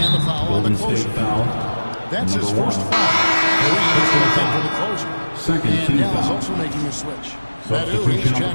the foul on the Golden closer. State foul. That's his Number first 1. foul. For the closer. Second and team Dallas foul. also making a switch. Substitution He's on the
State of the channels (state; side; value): inverted; both; correlation -1.00